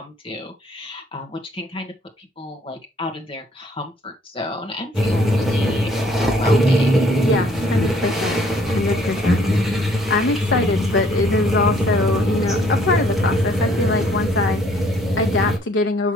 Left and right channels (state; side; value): normal; both; correlation 0.62